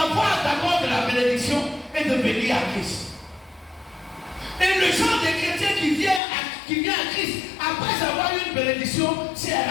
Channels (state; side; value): drops out; right; at 6.2 s